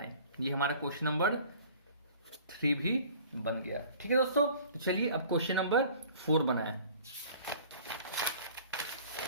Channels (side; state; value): both; inverted; correlation -0.48